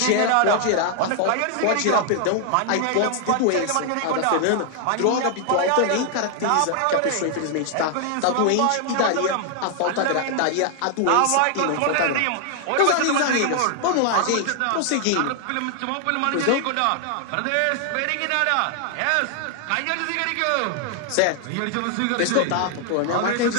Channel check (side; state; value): both; different; correlation 0.00